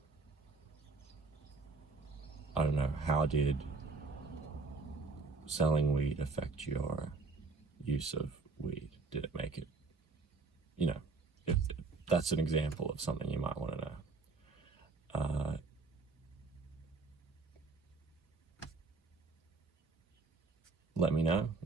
I don't know, how did selling weed affect your use of weed? Did it make it, if that's an example of something you might want to know. Let me know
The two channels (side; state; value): left; quieter; 4.2 dB